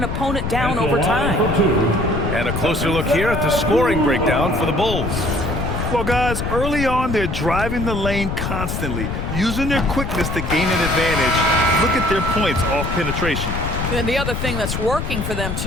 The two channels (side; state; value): left; noise; rumble, 3 dB below the sound